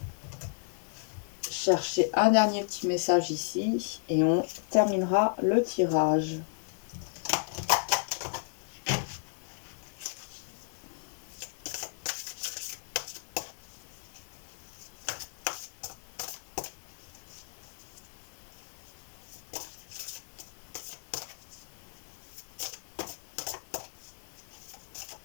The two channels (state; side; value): silent; right; 55 dB below the other